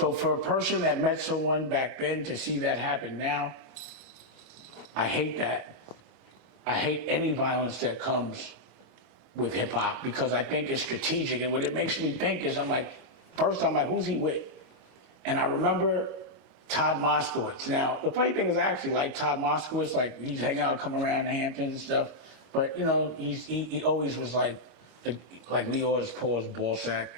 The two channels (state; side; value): late; left; 25 ms